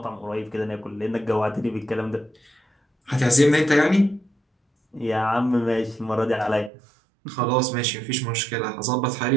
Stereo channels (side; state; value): left; drops out; at 6.7 s